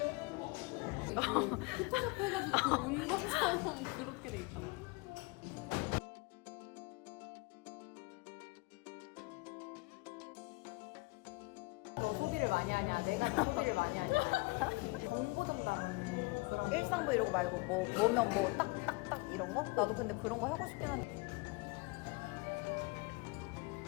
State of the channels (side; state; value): right; quieter; 26.5 dB